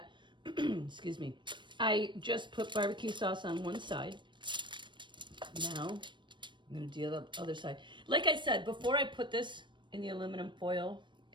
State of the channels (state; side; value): late; left; 0.22 ms